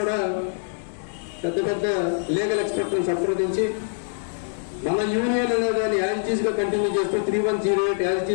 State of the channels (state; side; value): silent; right; digital silence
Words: పెద్ద లీగల్ ఎక్స్పర్ట్ని సంప్రదించి మన యూనియన్ అనేదాన్ని యాజిటీస్గా కంటిన్యూ చేస్తూ 3108